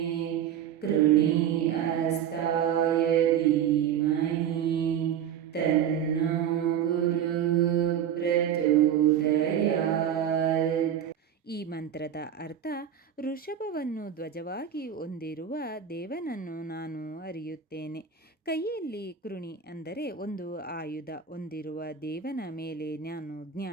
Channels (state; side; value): quieter; left; 9.1 dB